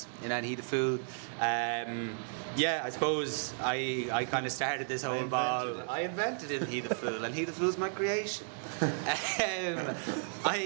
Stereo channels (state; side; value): silent; left; 55 dB below the other